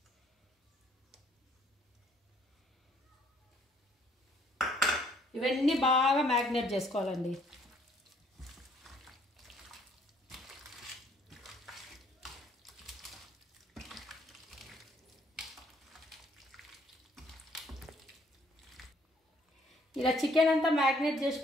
ఇవన్నీ బాగా మ్యాగ్నేట్ చేసుకోవాలండి. ఇలా చికెన్ అంతా మ్యాగ్నేట్ చేసి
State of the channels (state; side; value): normal; both; correlation 0.64